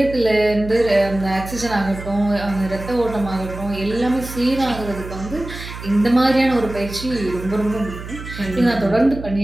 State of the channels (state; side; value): noise; right; hum, 11 dB below the sound